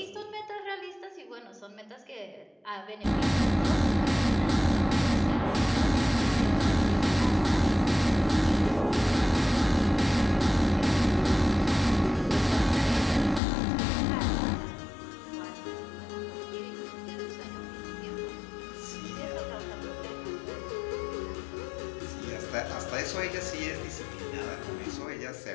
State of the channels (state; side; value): drops out; right; at 13.4 s